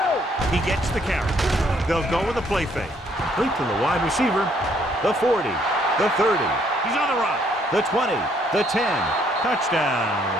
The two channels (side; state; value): both; normal; correlation 0.67